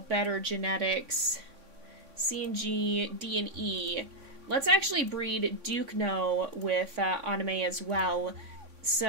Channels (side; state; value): left; late; 3.6 ms